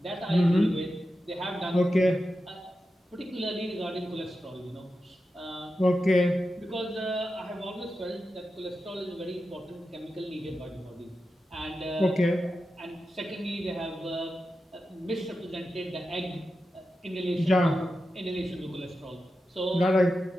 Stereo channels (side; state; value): both; normal; correlation 0.91